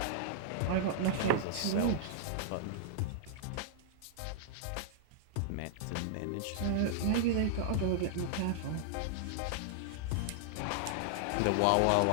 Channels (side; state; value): both; different; correlation -0.01